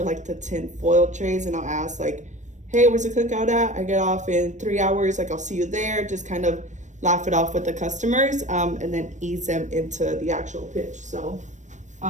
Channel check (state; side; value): late; left; 0.35 ms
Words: like the tin foil trays, and I'll ask like, hey, where's the cookout at? I get off in 3 hours, like I'll see you there. Just kind of laugh it off with the customers, and then ease them into the actual pitch. So